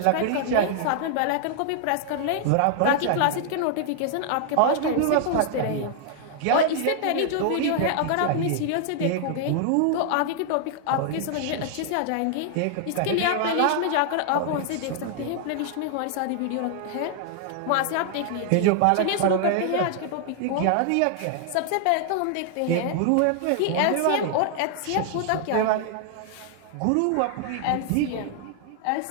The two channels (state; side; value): different; both; correlation 0.00